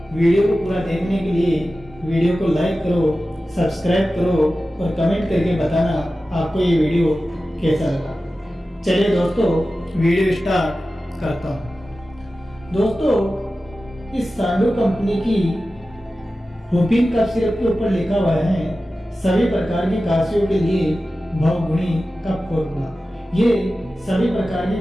वीडियो को पूरा देखने के लिए वीडियो को लाइक करो, सब्सक्राइब करो और कमेंट करके बताना आपको ये वीडियो कैसा लगा। चलिए दोस्तों, वीडियो स्टार्ट करता हूँ। दोस्तों, इस सांडू कंपनी की हुपिन कफ सिरप के ऊपर लिखा हुआ है सभी प्रकार की काशियों के लिए बहुगुणी कफ फॉर्मूला। ये सभी प्रकार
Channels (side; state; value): both; normal; correlation 0.94